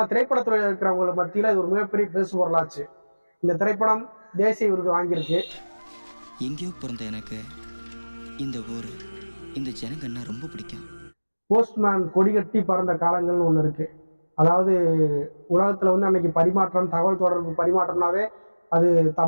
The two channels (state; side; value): inverted; both; correlation -1.00